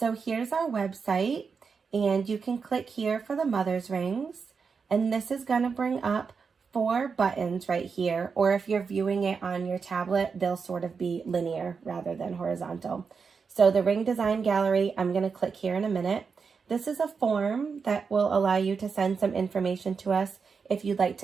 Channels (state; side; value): quieter; left; 5.5 dB